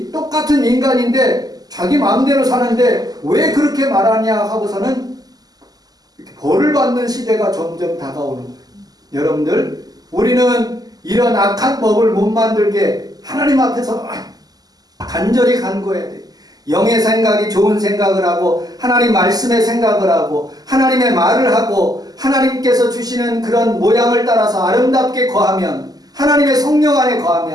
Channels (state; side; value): late; left; 0.18 ms